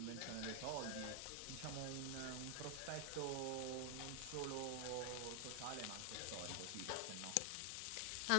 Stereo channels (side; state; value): both; different; correlation 0.00